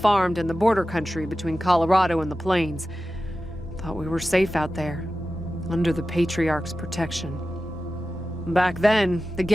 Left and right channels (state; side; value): normal; both; correlation 0.94